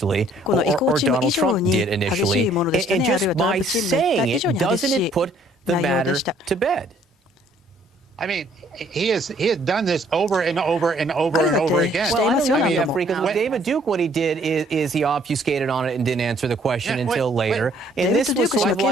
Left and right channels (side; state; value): both; normal; correlation 0.62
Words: or Donald Trump did initially. And just by saying it, doesn't it put the matter to bed? I mean, he has done this over and over and over and over again. Well, I don't know, Jeffrey, because with David Duke, what he did is he obfuscated on it and didn't answer the question until later. And this was sort of